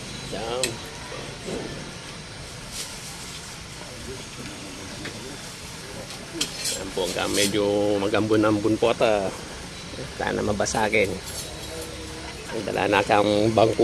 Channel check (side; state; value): both; identical; correlation 1.00